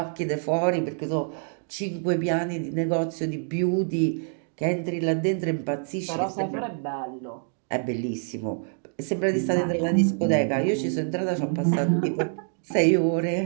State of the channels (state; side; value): silent; left; 61 dB below the other